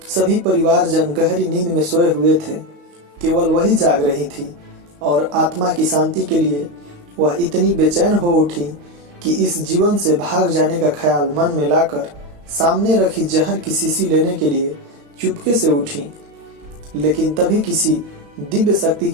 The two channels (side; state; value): left; late; 35 ms